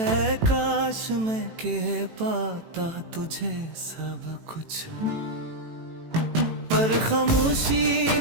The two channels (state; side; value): late; left; 18 ms